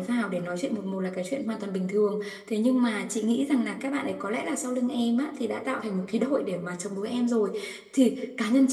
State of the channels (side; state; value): both; identical; correlation 1.00